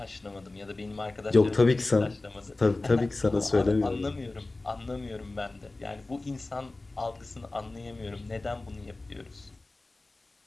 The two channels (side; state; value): right; quieter; 3.1 dB